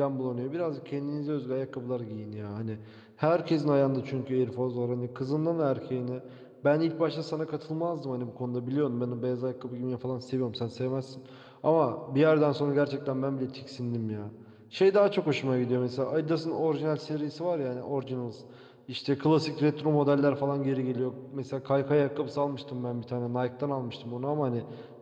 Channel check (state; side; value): identical; both; correlation 1.00